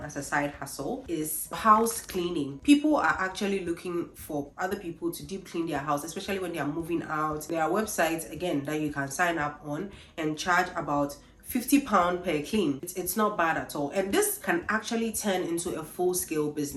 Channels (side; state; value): both; identical; correlation 1.00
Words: as a side hustle is house cleaning. People are actually looking for other people to deep clean their house, especially when they are moving out. There are websites again that you can sign up on and charge about £50 per clean. It's not bad at all, and this can actually turn into a full-scale